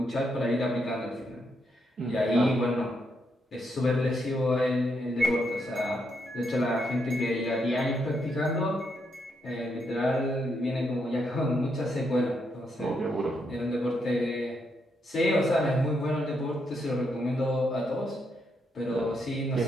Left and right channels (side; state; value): both; normal; correlation 0.79